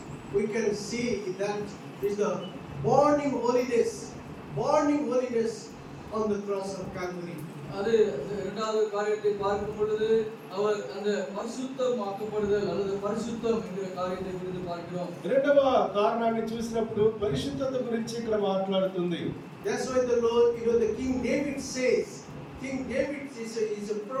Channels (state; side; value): identical; both; correlation 1.00